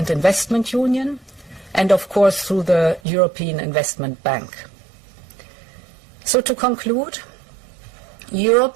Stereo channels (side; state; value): left; drops out; at 3.0 s